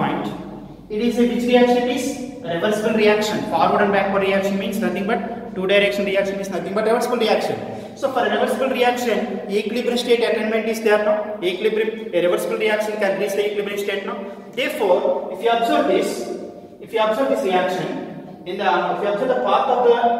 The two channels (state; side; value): identical; both; correlation 1.00